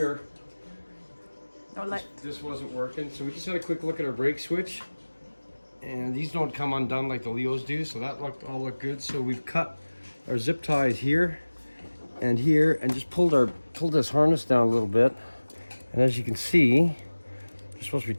no light. this wasn't working, so we just had a quick look at our brake switch, and these don't come undone like the Leos do, so that all looked good. So we've cut our zip ties here and here, and just pulled this harness down a little bit. And as you can see, there's supposed to be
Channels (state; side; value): inverted; both; correlation -1.00